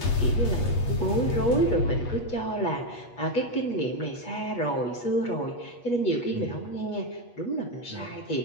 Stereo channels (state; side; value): late; right; 8.3 ms